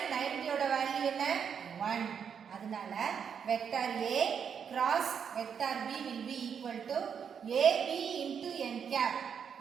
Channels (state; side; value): quieter; left; 7.3 dB